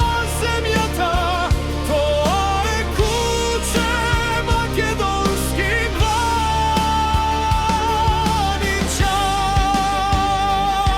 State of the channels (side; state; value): both; identical; correlation 1.00